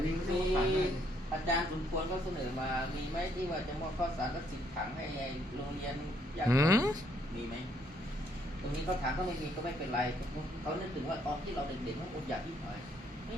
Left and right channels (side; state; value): both; normal; correlation 0.69